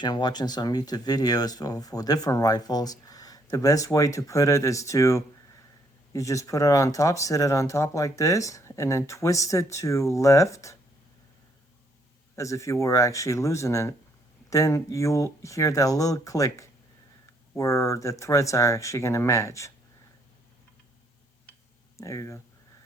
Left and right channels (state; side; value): normal; both; correlation 0.69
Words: and watching some YouTube videos for different rifles, the best way to put it is to, you just put it on top, sit it on top like this, and then twist it to left as if you were actually losing it. Then you'll hear that little click where the threads are actually going to match. There you go.